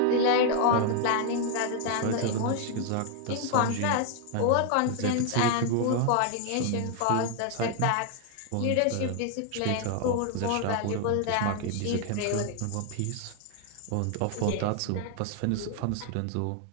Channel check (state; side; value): different; both; correlation 0.00